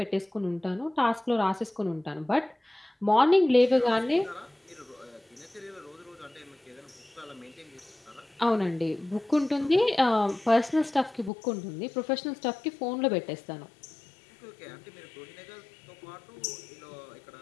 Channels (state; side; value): drops out; right; at 11.3 s